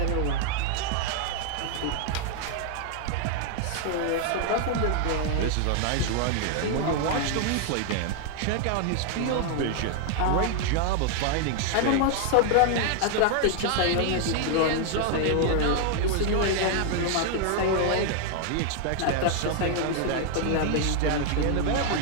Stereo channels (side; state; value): both; different; correlation 0.00